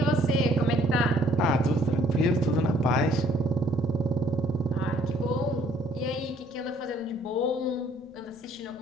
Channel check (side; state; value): left; noise; rumble, 30 dB below the sound